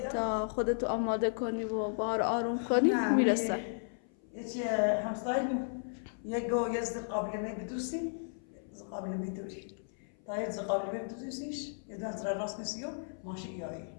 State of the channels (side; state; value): right; silent; 55 dB below the other